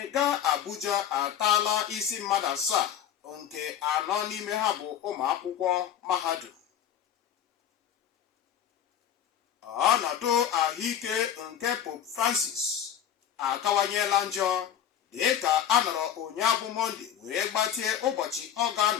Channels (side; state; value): right; quieter; 9.7 dB